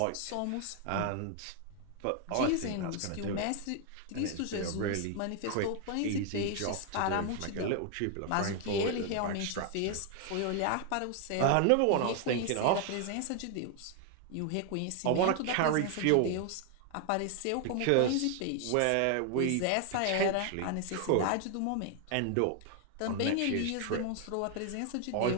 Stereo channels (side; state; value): both; different; correlation 0.00